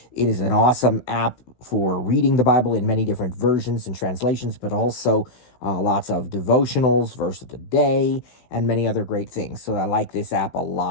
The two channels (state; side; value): late; right; 16 ms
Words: It is an awesome app for reading the Bible in many different versions and translations, but also lots of devotionals, verse of the day, and many other great things. So I like this app a